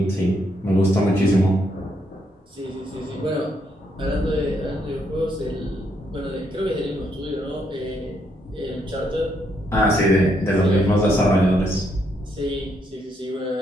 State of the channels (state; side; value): normal; both; correlation 0.76